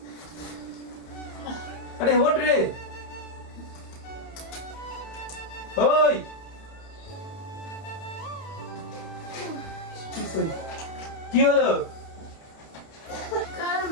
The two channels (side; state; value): right; late; 31 ms